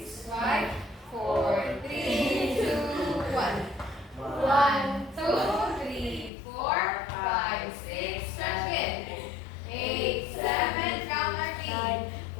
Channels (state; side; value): drops out; right; at 6.3 s